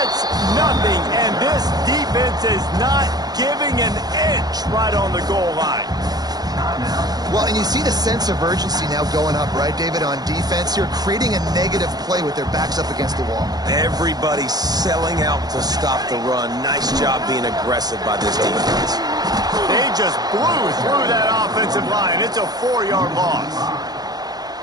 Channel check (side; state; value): left; late; 0.19 ms